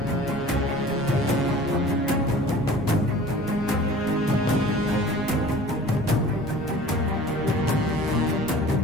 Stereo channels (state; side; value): normal; both; correlation 0.45